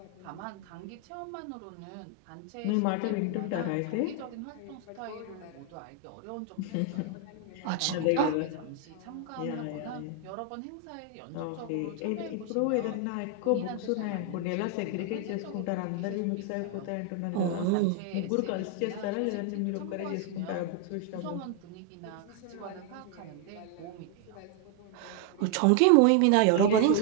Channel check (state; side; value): different; both; correlation 0.00